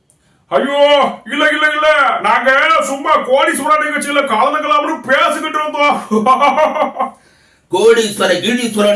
ஐயோ, இல்ல இல்ல இல்ல, நாங்க சும்மா கோடீஸ்வரன் நிகழ்ச்சியில கலந்துக்கலாம்னு பேசிக்கிட்டு இருந்தோம். கோடீஸ்வர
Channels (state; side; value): identical; both; correlation 1.00